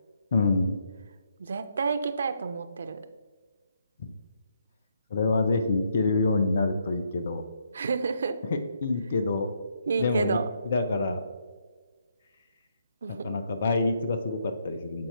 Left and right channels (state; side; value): inverted; both; correlation -0.74